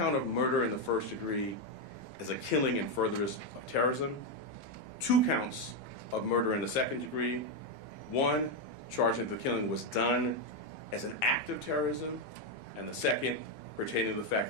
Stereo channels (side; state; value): right; late; 15 ms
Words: of murder in the first degree as a killing in furtherance of terrorism, 2 counts of murder in the second degree, 1 charging that the killing was done as an act of terrorism, and the second pertaining to the fact